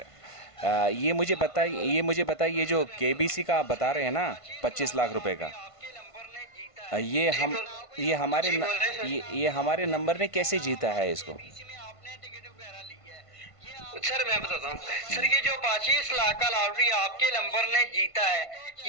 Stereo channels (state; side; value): late; right; 1.5 ms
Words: ये मुझे बताइए, ये जो केबीसी का आप बता रहे हैं ना, 25 लाख रुपए का। ये जी हम बोल ये हमारे जी न, बोल रहे हैं ये हमारे नंबर ने कैसे जीता है इसको? सर। मैं बताता हूँ सर, हम्म। ये जो 25 लाख का लॉटरी आपके नंबर ने जीता है,